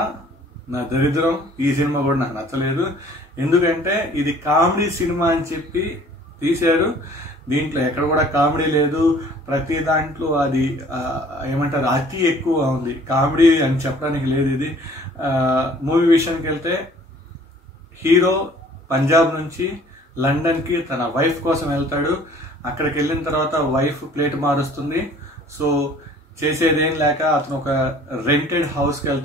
నా దరిద్రం. ఈ సినిమా కూడా నాకు నచ్చలేదు. ఎందుకంటే ఇది కామెడీ సినిమా అని చెప్పి తీశారు. దీంట్లో ఎక్కడ కూడా కామెడీ లేదు. ప్రతి దాంట్లో అది ఏమంటారు, అతి ఎక్కువ ఉంది. కామెడీ అని చెప్పడానికి లేదు. ఇది మూవీ విషయానికి వెళ్తే హీరో పంజాబ్ నుంచి లండన్కి తన వైఫ్ కోసం వెళ్తాడు. అక్కడికి వెళ్ళిన తర్వాత వైఫ్ ప్లేట్ మారుస్తుంది. సో చేసేదేం లేక అతను ఒక రెంటెడ్ హౌస్కి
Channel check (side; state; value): both; normal; correlation 0.53